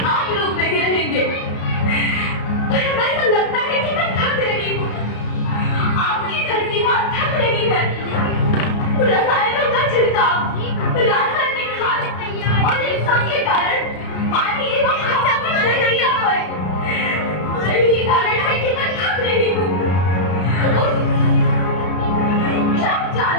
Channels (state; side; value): late; right; 33 ms